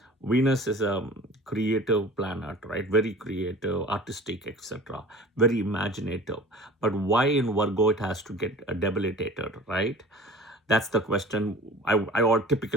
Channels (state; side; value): normal; both; correlation 0.43